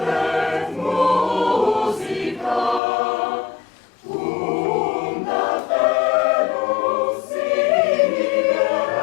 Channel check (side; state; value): right; drops out; at 2.8 s